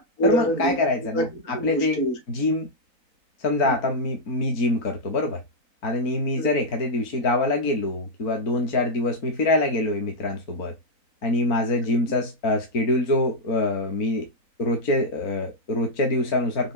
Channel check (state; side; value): late; right; 3.9 ms